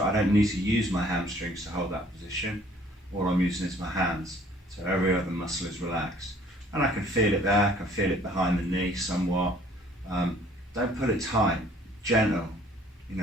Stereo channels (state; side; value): normal; both; correlation 0.57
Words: I don't need to use my hamstrings to hold that position. All I'm using is my hands. So every other muscle is relaxed. And I can feel it there, I can feel it behind the knee somewhat. Don't put it tight, gentle, you